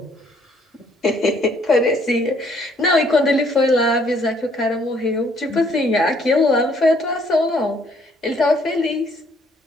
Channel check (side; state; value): both; normal; correlation 0.64